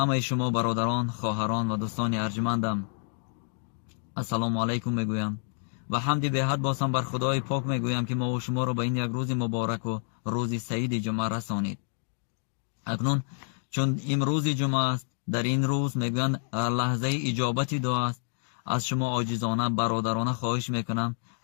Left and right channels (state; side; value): silent; right; 59 dB below the other